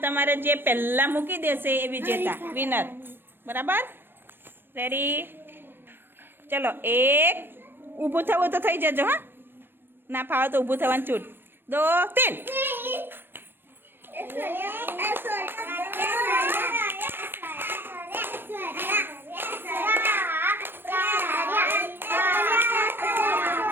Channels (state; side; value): late; left; 0.098 ms